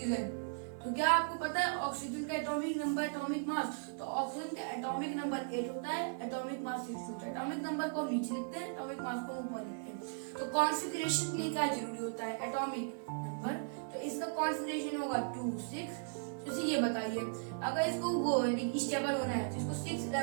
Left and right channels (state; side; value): silent; left; digital silence